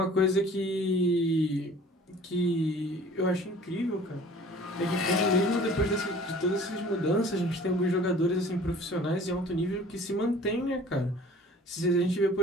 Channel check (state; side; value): normal; both; correlation 0.49